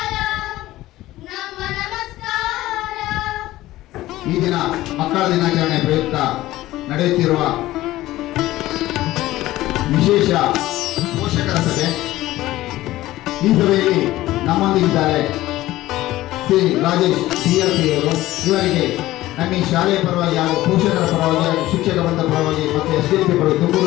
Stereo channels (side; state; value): right; quieter; 16.2 dB